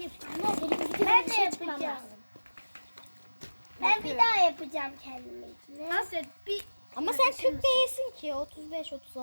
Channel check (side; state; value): both; inverted; correlation -1.00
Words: Ben de yapacağım. Ben bir daha yapacağım kendime. Hasret bir... Ama sen 40 değilsin ki. 35,